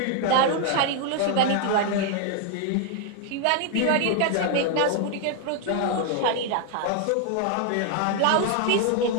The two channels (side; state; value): both; different; correlation 0.00